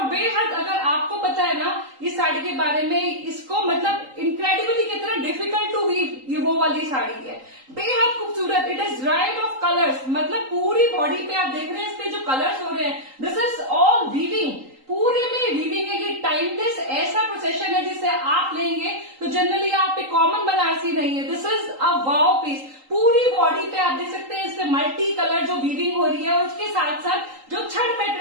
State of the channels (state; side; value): late; left; 3.8 ms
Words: बेहद, अगर आपको पता है ना इस साड़ी के बारे में, इसको मतलब इनक्रेडिबली कितना डिफिकल्ट टू वीव, ये वो वाली साड़ी है, बेहद खूबसूरत। It is right of colours, मतलब पूरी बॉडी पे आप देख रहे हैं, इस पे जो कलर्स हो रहे हैं, दिस इज ऑल वीविंग, पूरे में वीविंग है। ये टाइमलेस ऐसा प्रोसेशन है जिसे आप लेंगे तो जनरली आप पे कॉमन बनारसी नहीं है। This is a wow piece. पूरी बॉडी पे आप देख सकते हैं, इसपे मल्टी कलर जो वीविंग हो रही है, और उसके साथ साथ जो छड़